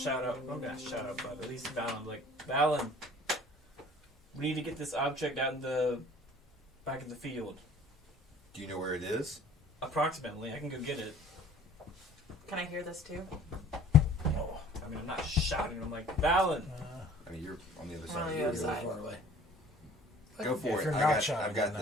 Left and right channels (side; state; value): both; normal; correlation 0.50